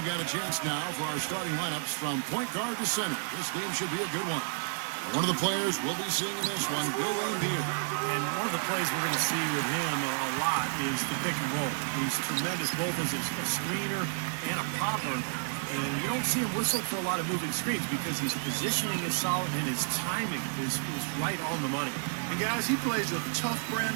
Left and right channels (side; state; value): left; silent; 57 dB below the other